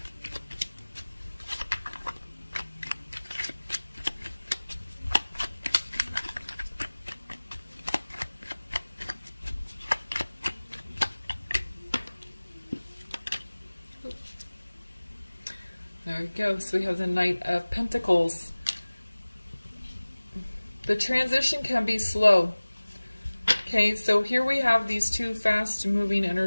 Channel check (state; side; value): inverted; both; correlation -1.00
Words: There we go. So we have the Knight of Pentacles. The transition can be slow. Okay, so here we have these two fast-moving